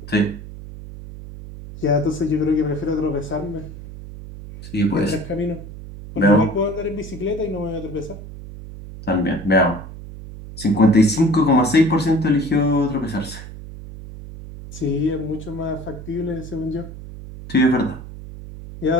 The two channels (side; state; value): right; noise; hum, 13 dB below the sound